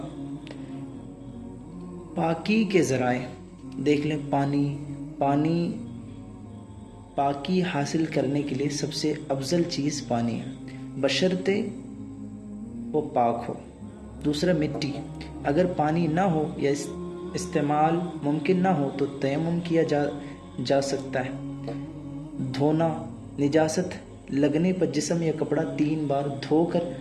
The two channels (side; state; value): both; identical; correlation 1.00